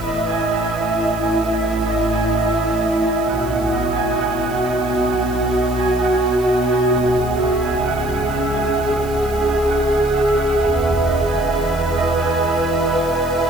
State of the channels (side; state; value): right; noise; hiss, 18 dB below the sound